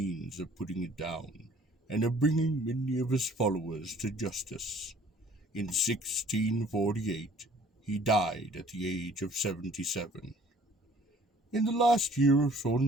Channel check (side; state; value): both; normal; correlation 0.54